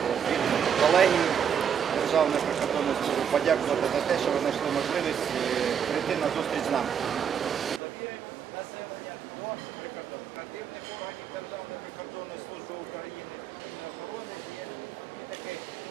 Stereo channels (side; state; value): left; quieter; 8.0 dB